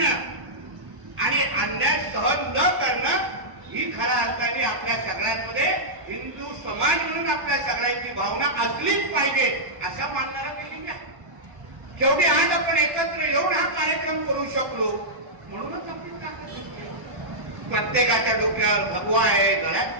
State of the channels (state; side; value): late; left; 1.2 ms